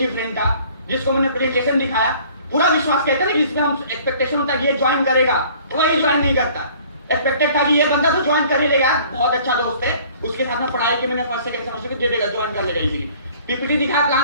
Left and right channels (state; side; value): inverted; both; correlation -0.53